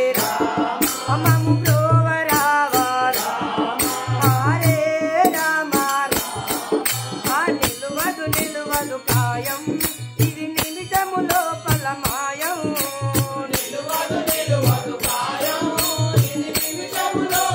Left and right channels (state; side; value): identical; both; correlation 1.00